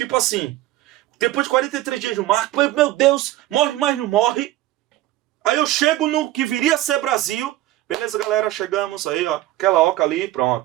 assim, depois de 43 dias no mar, meu Deus, morre, mas não morre. Aí eu chego no que viria a ser Brasil. Beleza, galera? Chegamos aí, aquela oca ali,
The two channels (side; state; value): left; quieter; 15.5 dB